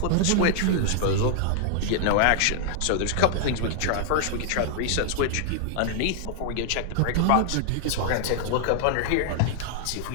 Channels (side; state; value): both; different; correlation -0.01